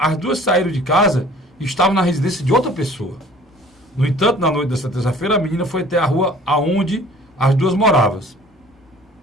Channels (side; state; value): both; normal; correlation 0.50